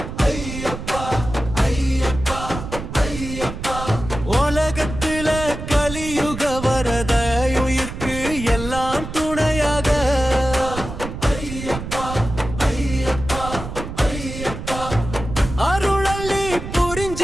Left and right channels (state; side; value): noise; right; rumble, 8 dB below the sound